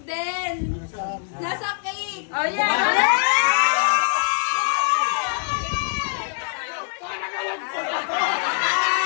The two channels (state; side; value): silent; right; digital silence